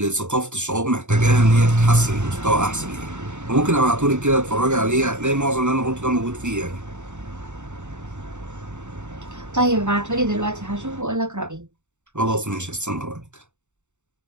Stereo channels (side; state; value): left; late; 0.84 ms